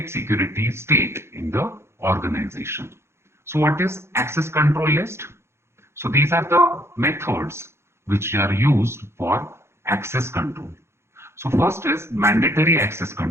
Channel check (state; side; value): late; left; 0.13 ms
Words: security state in the organization. So what is access control list? So these are the methods which are used for access control. So first is mandatory access